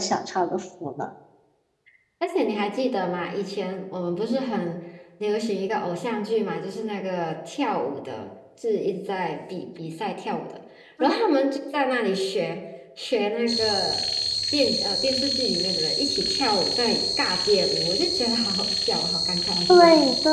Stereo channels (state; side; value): identical; both; correlation 1.00